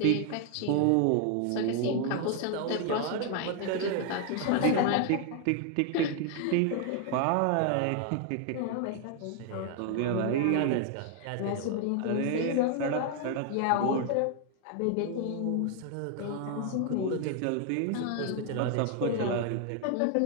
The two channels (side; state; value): both; different; correlation 0.00